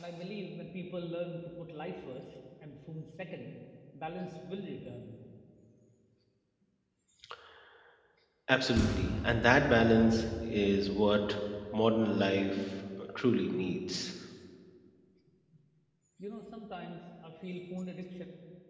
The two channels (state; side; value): identical; both; correlation 1.00